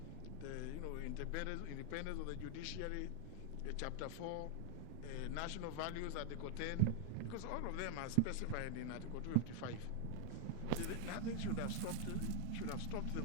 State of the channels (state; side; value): different; both; correlation 0.01